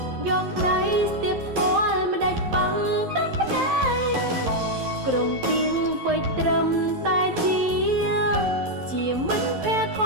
យកដៃស្ទាបស្គាល់មិនដាច់ប៉ងទឹកភ្នែកក្រុមពីងពេចត្រឹមតែជាមិនភ័យធ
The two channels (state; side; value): late; left; 11 ms